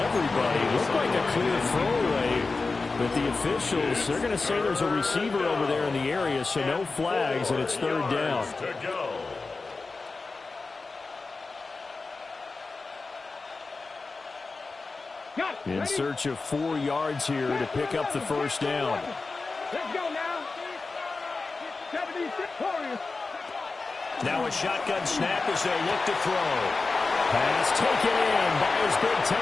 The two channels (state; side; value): quieter; right; 3.9 dB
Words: Looked like a clear throwaway. But the officials, they're going to say there's a receiver over there in the area, so no flags, and it's third down. In search of 4 yards here to pick up the first down. Let's go now. 76 Warriors. Now a shotgun snap as they look to throw. Pass taken in by his big